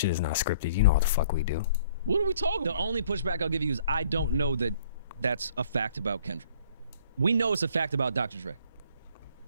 is not scripted. You know what the fuck we do. What are we talking about? The only pushback I'll give you is I don't know that that's a fact about Kendrick. We know it's a fact about Dr. Dre.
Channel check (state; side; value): inverted; both; correlation -0.58